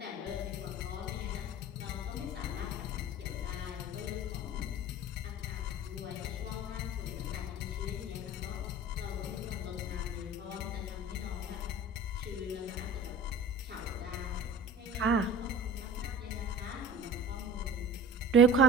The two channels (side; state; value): both; normal; correlation 0.40